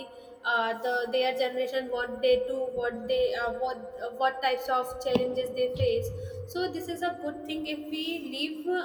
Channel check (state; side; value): identical; both; correlation 1.00